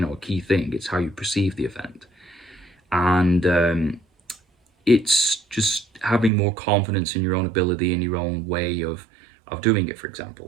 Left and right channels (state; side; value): drops out; left; at 6.3 s